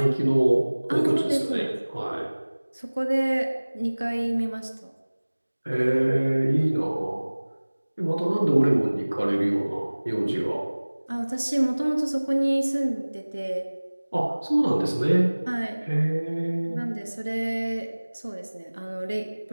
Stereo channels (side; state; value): both; inverted; correlation -1.00